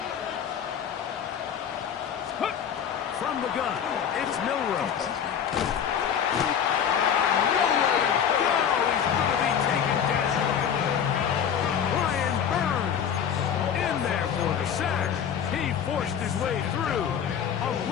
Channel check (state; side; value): quieter; right; 8.3 dB